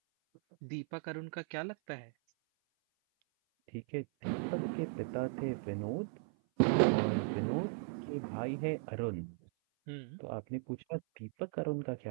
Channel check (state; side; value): silent; left; 53 dB below the other